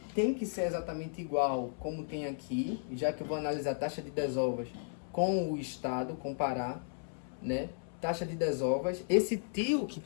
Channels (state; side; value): silent; right; 55 dB below the other